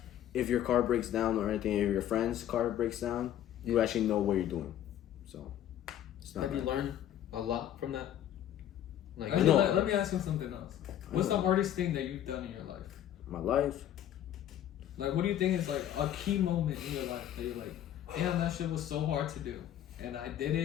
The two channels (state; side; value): quieter; right; 11.2 dB